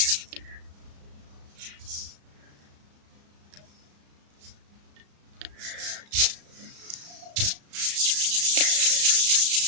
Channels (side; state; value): left; late; 35 ms